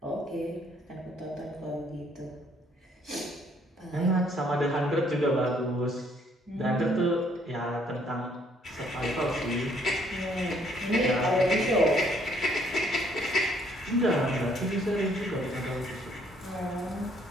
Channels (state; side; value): normal; both; correlation 0.65